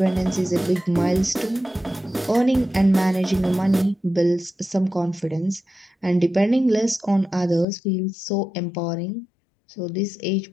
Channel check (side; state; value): right; drops out; at 7.7 s